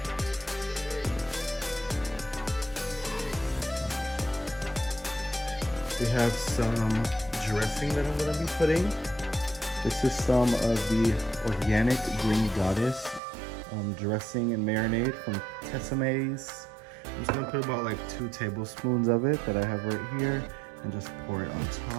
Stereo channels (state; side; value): drops out; left; at 13.2 s